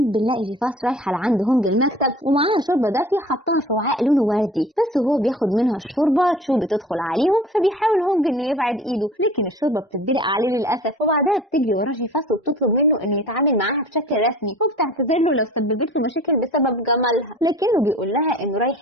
بنلاقي جيفاس رايحه لعند هونج المكتب ومعاها شوربه دافيه حطها في وعاء لونه وردي، بس وهو بياخد منها الشوربه تشو بتدخل عليهم، فبيحاول هونج انه يبعد ايده، لكن الشوربه بتتدلق عليه للاسف. وبعدها بتجري ورا جيفاس وبتطلب منه انه يتعامل معاها بشكل رسمي، وبتعتذر له لو سببت له مشاكل بسبب جمالها، لكنه بيقول لها انه رايح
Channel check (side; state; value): both; normal; correlation 0.44